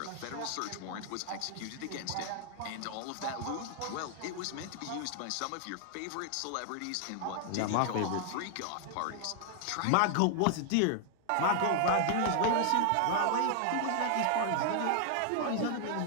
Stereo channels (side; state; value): both; different; correlation 0.00